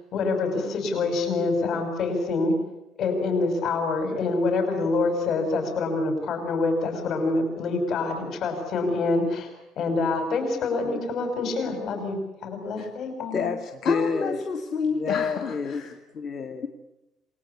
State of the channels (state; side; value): quieter; right; 3.2 dB